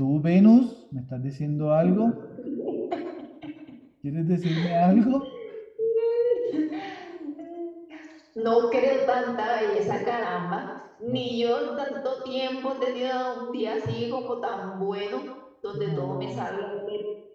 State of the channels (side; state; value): both; identical; correlation 1.00